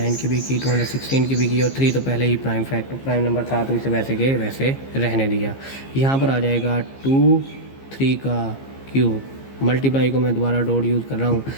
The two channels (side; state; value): right; late; 15 ms